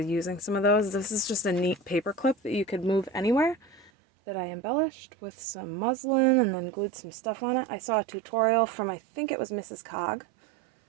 using some of those. This is just a neat paper clip that you could move anywhere that I embellished with some muslin and then glued some stuff on it. I saw a tutorial from, I think it was Mrs. Cog.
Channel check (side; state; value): left; drops out; at 3.9 s